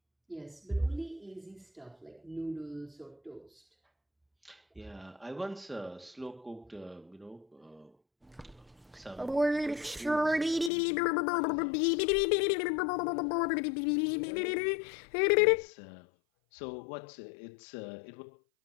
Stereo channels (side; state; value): right; drops out; at 10.7 s